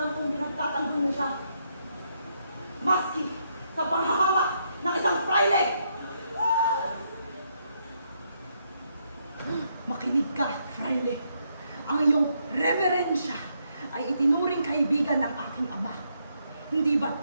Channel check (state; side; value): inverted; both; correlation -0.76